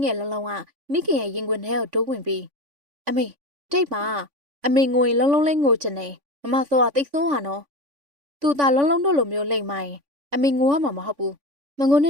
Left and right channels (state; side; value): late; left; 3.5 ms